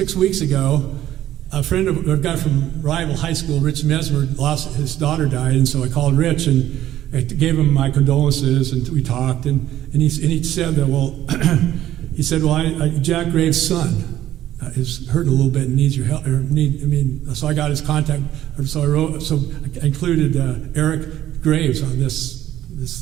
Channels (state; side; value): quieter; left; 12.9 dB